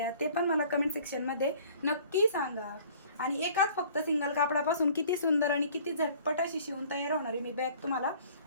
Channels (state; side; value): inverted; both; correlation -0.52